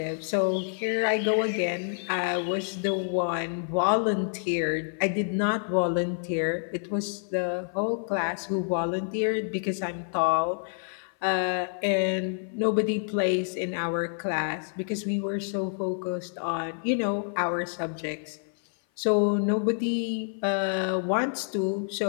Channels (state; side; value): silent; right; 56 dB below the other